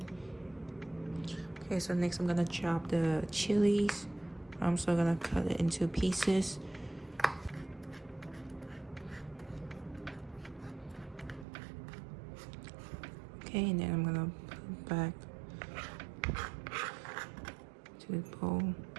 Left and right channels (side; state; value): left; drops out; at 11.5 s